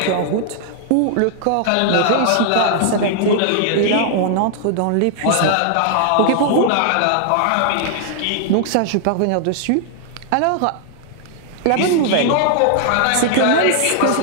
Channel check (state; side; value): different; both; correlation -0.01